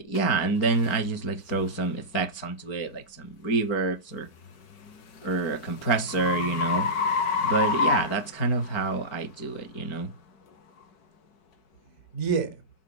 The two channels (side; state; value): right; late; 4.6 ms